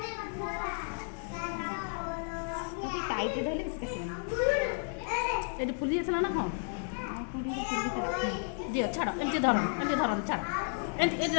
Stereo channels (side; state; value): right; silent; 56 dB below the other